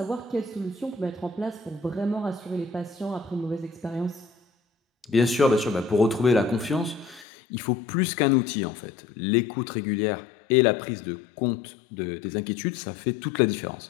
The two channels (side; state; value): right; drops out; at 7.2 s